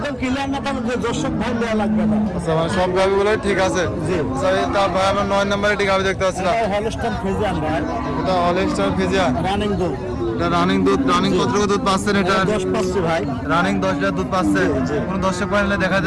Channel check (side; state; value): both; identical; correlation 1.00